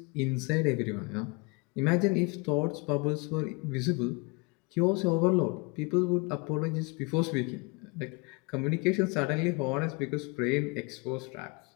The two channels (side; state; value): right; quieter; 29.0 dB